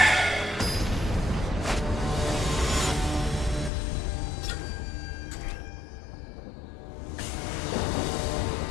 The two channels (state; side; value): drops out; right; at 3.7 s